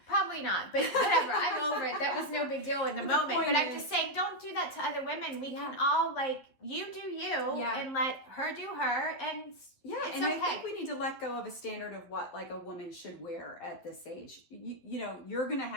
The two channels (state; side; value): late; right; 11 ms